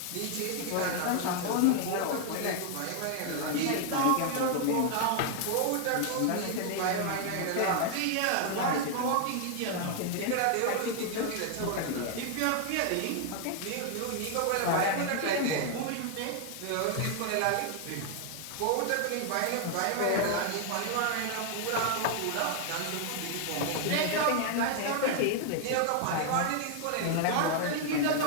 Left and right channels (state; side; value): different; both; correlation 0.00